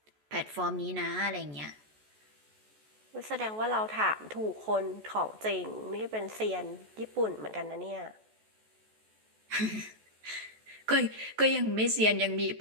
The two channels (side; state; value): left; late; 14 ms